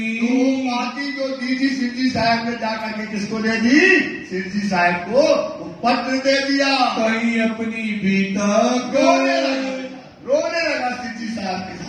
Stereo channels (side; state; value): both; identical; correlation 1.00